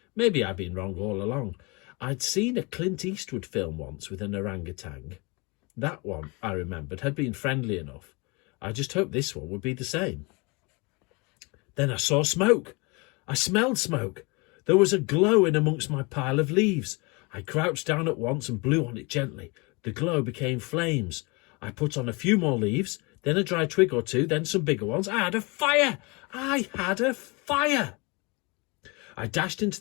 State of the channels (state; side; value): quieter; right; 28.4 dB